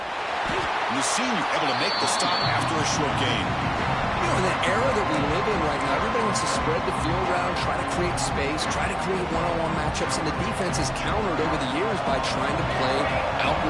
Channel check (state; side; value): identical; both; correlation 1.00